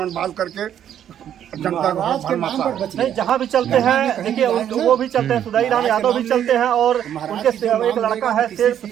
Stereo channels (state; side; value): quieter; left; 10.0 dB